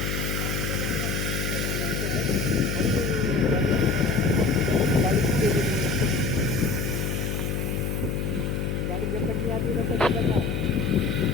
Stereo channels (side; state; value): left; noise; hum, 1 dB below the sound